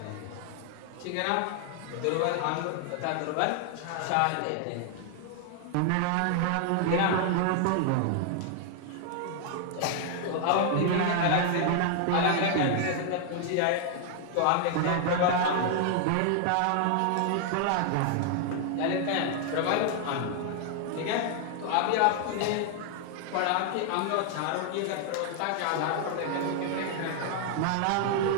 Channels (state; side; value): different; both; correlation 0.00